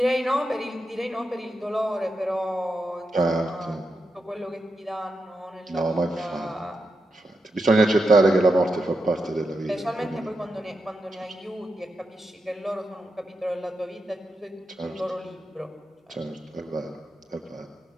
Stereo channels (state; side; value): normal; both; correlation 0.87